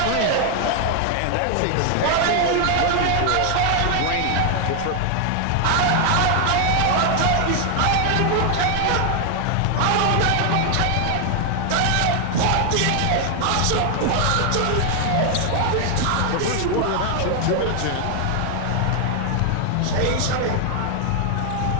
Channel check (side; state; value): both; different; correlation 0.00